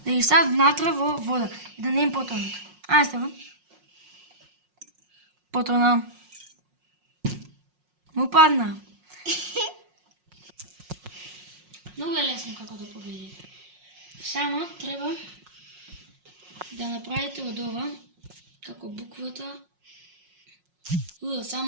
да ги стават внатре во вода и да не им потонат. Ајде ставам. Потона. Му падна. Многу е лесно како да победите. Само треба да направите од ова, како буквата.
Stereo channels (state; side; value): late; left; 5.5 ms